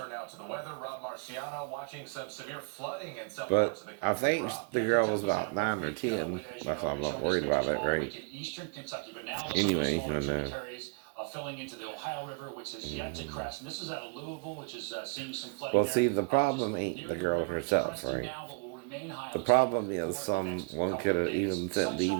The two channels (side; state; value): left; quieter; 33.9 dB